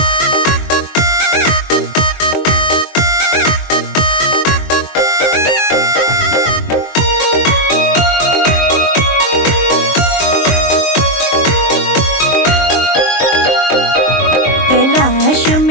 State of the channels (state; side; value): late; right; 23 ms